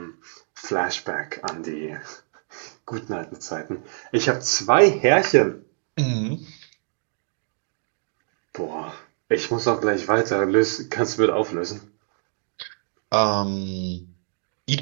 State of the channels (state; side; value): silent; left; digital silence